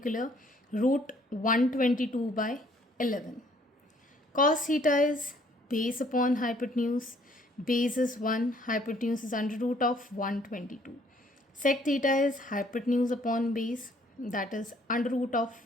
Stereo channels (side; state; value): both; normal; correlation 0.62